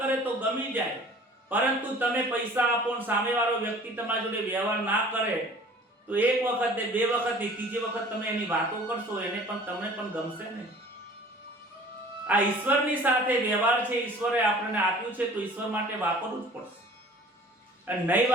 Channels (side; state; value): both; normal; correlation 0.48